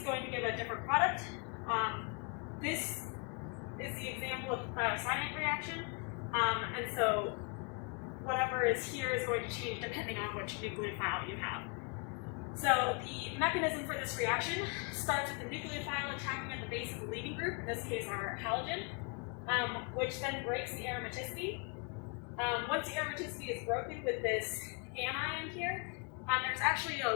going to give a different product. This is the example of the thiocyanate reaction. And so whatever is here is going to change depending on which nucleophile you have. So the mechanism for this reaction starts with the nucleophile attacking at the base of the leading group, in this case our halogen, which then breaks the aromaticity. Once the aromaticity is broken with this anion here, there's actually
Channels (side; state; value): right; quieter; 35.7 dB